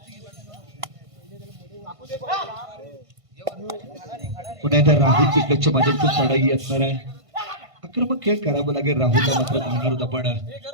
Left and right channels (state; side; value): late; left; 1.5 ms